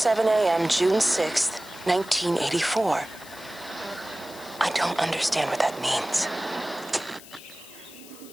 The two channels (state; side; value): noise; left; hiss, 19 dB below the sound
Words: a.m. June 6th, 1984. I don't understand what that means.